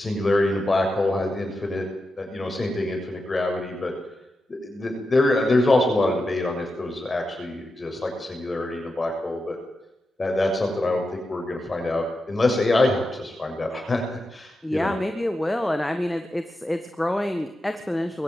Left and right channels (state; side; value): normal; both; correlation 0.89